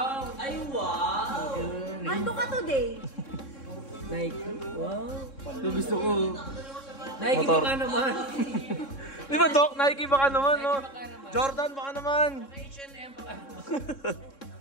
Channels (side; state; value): right; late; 3.6 ms